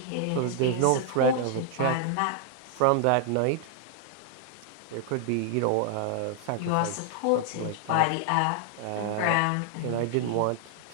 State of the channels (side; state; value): both; different; correlation 0.00